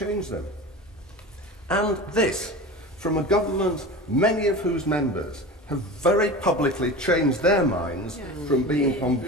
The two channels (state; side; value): normal; both; correlation 0.31